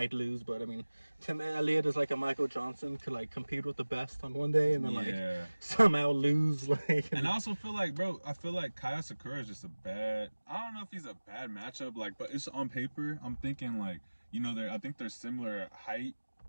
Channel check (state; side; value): inverted; both; correlation -1.00